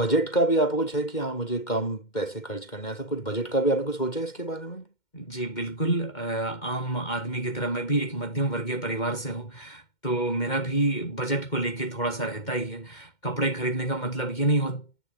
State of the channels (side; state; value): right; late; 2.1 ms